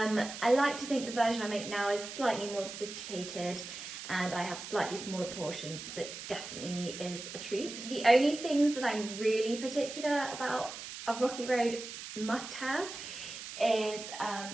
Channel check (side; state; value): right; noise; hiss, 10 dB below the sound